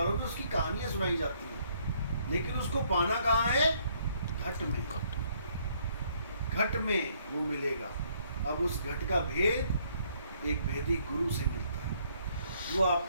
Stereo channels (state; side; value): inverted; both; correlation -0.67